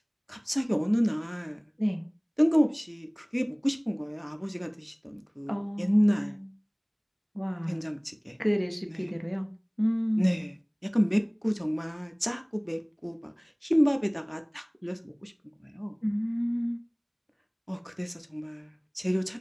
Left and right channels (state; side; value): identical; both; correlation 1.00